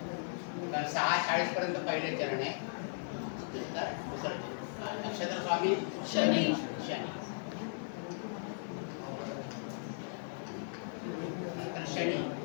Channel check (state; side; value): silent; right; digital silence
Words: तर 6:40 पर्यंत पहिले चरण आहे नंतर दुसरं चरण हा. नक्षत्र स्वामी शनी शनी नंतर शनी